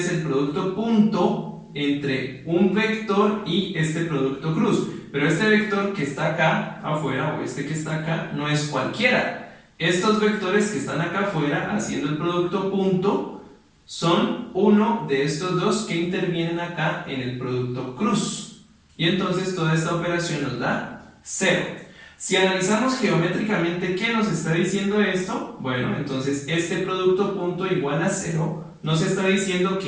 el producto punto entre un vector y este producto cruz. Pero este vector que está acá afuera, o este que está acá, no es cualquiera. Estos vectores que están acá afuera haciendo el producto punto son uno de estos dos que intervienen acá en el producto cruz. Y entonces toda esta operación nos da 0. Si analizamos geométricamente qué nos está diciendo esto, bueno, entonces este producto punto igual a 0 nos está diciendo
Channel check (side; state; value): both; identical; correlation 1.00